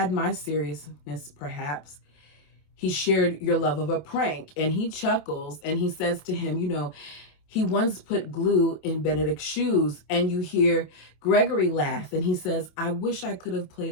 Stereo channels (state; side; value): late; right; 27 ms